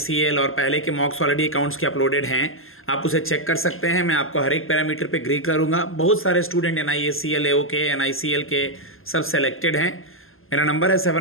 और पहले के मॉक्स ऑलरेडी अकाउंट्स के अपलोडेड हैं, आप उसे चेक कर सकते हैं। मैं आपको हर एक पैरामीटर पे ग्री करूँगा। बहुत सारे स्टूडेंट NICL AO के, NICL के सब सेलेक्टेड हैं। मेरा नंबर है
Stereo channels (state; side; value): late; right; 0.60 ms